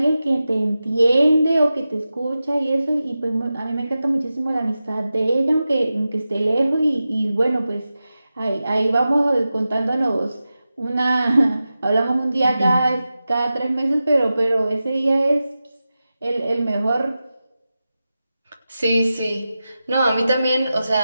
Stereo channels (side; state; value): both; inverted; correlation -0.93